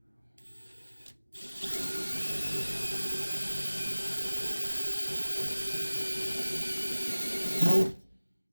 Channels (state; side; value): inverted; both; correlation -1.00